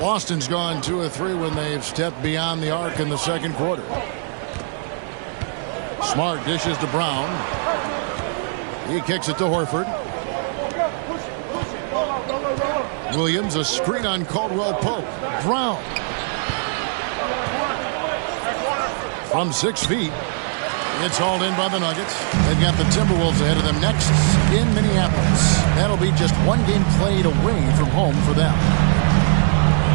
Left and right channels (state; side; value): silent; left; 62 dB below the other